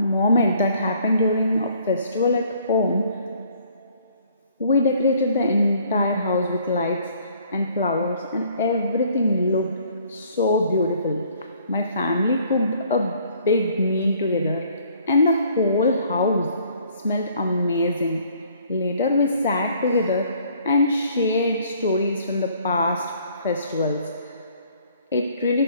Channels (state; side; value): inverted; both; correlation -0.60